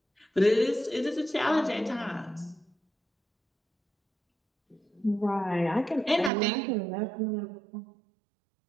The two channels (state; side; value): drops out; left; at 6.3 s